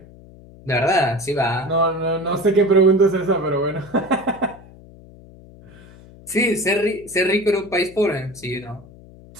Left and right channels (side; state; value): left; noise; hum, 21 dB below the sound